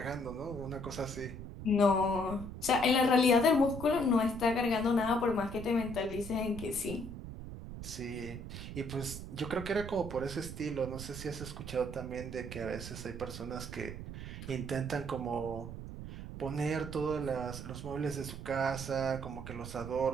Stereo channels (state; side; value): noise; right; rumble, 9 dB below the sound